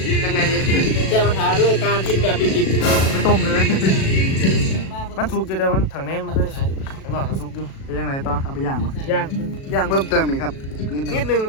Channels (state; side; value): late; right; 37 ms